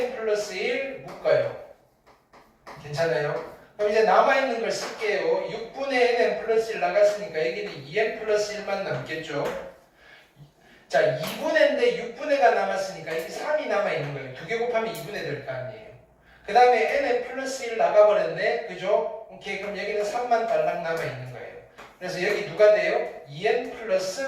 플러스 1 묶어요. 괜찮아요? 그럼 이제 남아있는 걸 쓸게요. 6분의 nn 플러스 1 나갔으니까 여기는 2n 플러스 1만 남겠죠? 자, 2분의인데 6분의가 남았으니까 여기 3이 남아있는 거예요. 2개 곱하면 2분의 될 거 아니에요. 그 다음에 nn 플러스 1 나가버렸네. 그죠? 오케이. 그럼 여기는 3만 달랑 남아있는 거예요. 그래서 여기 누가 돼요? 2n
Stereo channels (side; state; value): both; identical; correlation 1.00